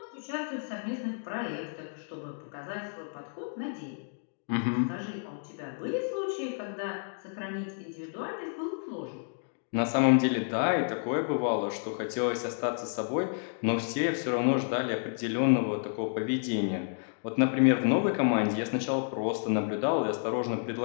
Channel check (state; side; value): silent; right; digital silence